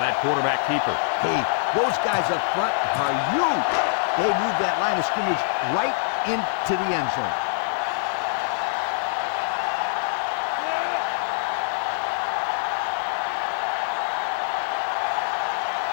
that quarterback keeper. Hey, those guys up front are huge. They move that line of scrimmage right into the end zone.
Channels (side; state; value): right; silent; digital silence